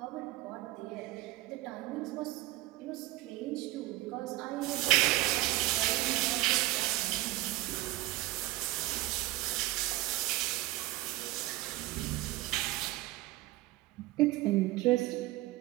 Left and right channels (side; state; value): left; quieter; 17.5 dB